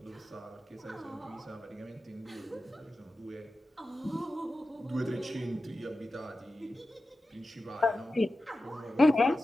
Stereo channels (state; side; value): normal; both; correlation 0.93